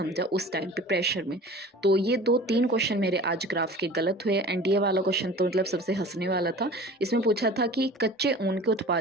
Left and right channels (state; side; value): normal; both; correlation 0.41